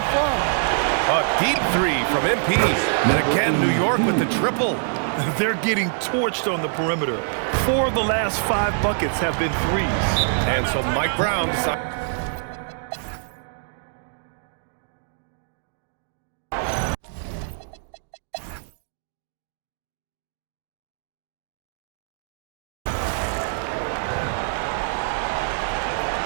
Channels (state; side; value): silent; left; digital silence